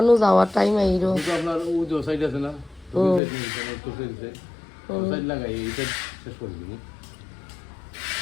যাওয়ার টাইম আইরো। আপনার ও যে সাইড আছে না সাইড লাগাই এটা শেষ করে দিন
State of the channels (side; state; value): right; drops out; at 3.2 s